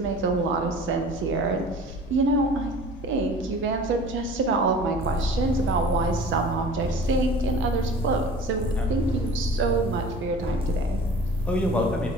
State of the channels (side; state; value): both; normal; correlation 0.43